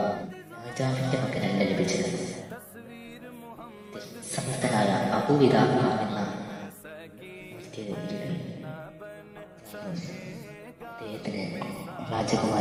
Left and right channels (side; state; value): both; identical; correlation 1.00